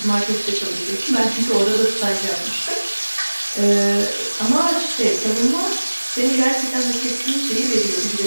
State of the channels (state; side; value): inverted; both; correlation -1.00